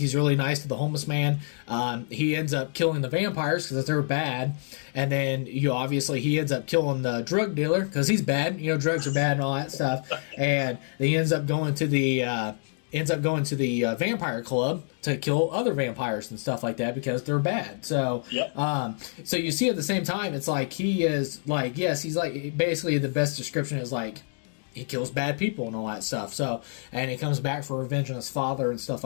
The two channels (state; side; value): silent; right; 60 dB below the other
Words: really nice to the homeless man. He ends up killing the vampires because they're bad. And then, obviously, he ends up killing the drug dealer because he's bad. Drugs are bad and all that stuff. And he ends up going to the vampire club to kill other vampires and stuff like that because they're bad. So, so you see at the same time, it's like he is like, yes, he's like, basically the best description is like, he kills bad people and all that stuff. So, and he comes back for revenge on his father and stuff